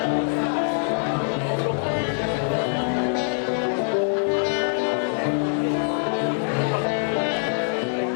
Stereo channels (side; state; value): right; silent; digital silence